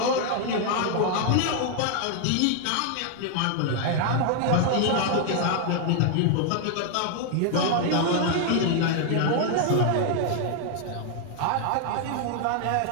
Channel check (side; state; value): both; different; correlation 0.00